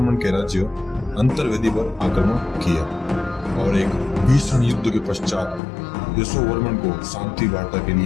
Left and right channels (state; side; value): drops out; right; at 5.6 s